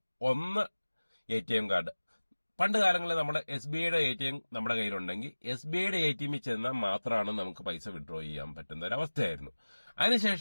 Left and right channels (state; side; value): inverted; both; correlation -1.00